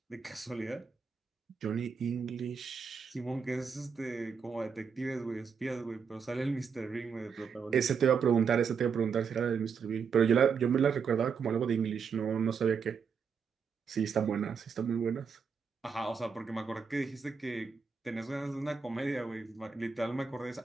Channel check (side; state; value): left; quieter; 6.0 dB